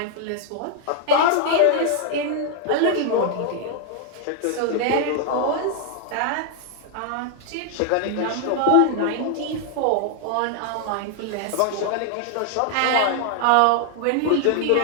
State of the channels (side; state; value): both; different; correlation 0.00